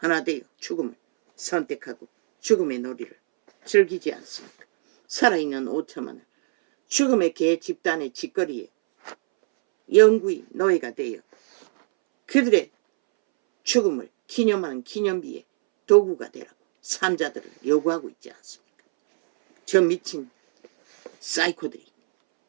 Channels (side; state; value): left; silent; 63 dB below the other